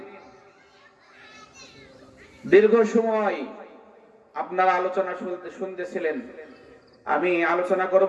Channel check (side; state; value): both; identical; correlation 1.00